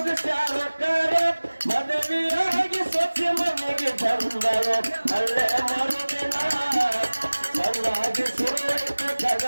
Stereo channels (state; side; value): inverted; both; correlation -1.00